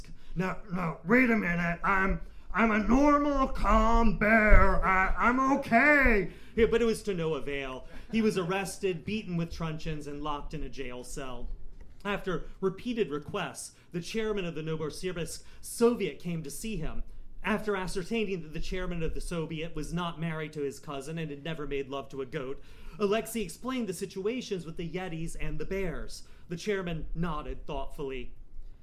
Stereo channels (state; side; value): identical; both; correlation 1.00